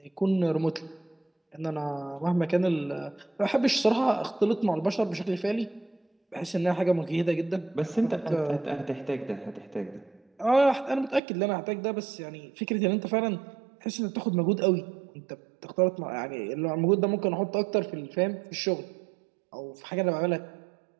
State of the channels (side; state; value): left; drops out; at 11.2 s